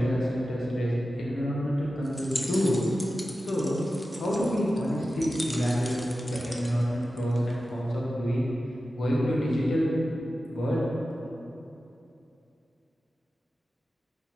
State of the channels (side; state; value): both; normal; correlation 0.93